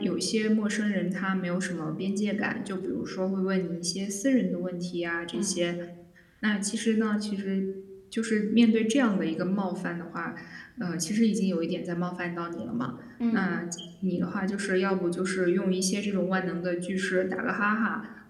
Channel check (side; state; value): both; identical; correlation 1.00